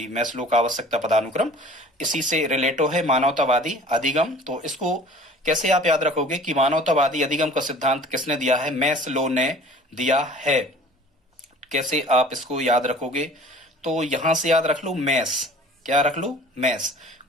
मैस्लो का आवश्यकता पदानुक्रम इसी से रिलेटो है मानवतावादी अधिगम। तो इसको कैसे आप याद रखोगे कि मानवतावादी अधिगम का सिद्धांत किसने दिया है? मैस्लो ने दिया है। कैसे आप इसको याद रखोगे? तो यहां से याद रख लो मैस। क्या रख लो? मैस।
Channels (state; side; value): normal; both; correlation 0.46